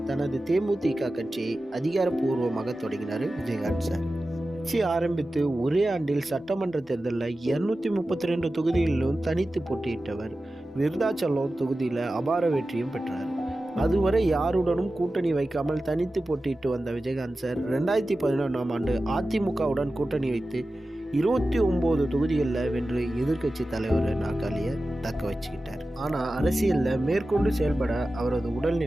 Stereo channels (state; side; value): normal; both; correlation 0.94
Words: தனது தேமுதிக கட்சியை அதிகாரப்பூர்வமாக தொடங்கினார் விஜயகாந்த் சார். கட்சி ஆரம்பித்து ஒரே ஆண்டில் சட்டமன்ற தேர்தலில் 232 தொகுதிகளிலும் தனித்து போட்டியிட்டவர். விருதாச்சலம் தொகுதியில் அபார வெற்றியும் பெற்றார். அதுவரை யாருடனும் கூட்டணி வைக்காமல் தனித்து போட்டியிட்டு வந்த விஜயகாந்த் சார் 2011ஆம் ஆண்டு அதிமுகவுடன் கூட்டணி வைத்து 29 தொகுதிகளில் வென்று எதிர்க்கட்சி தலைவர் நாற்காலியை தக்க வச்சுக்கிட்டார். ஆனால் அரசியலில் மேற்கொண்டு செயல்பட அவரது